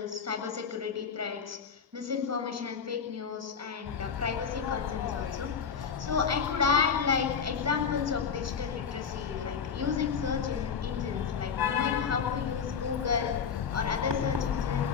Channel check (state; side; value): quieter; right; 6.5 dB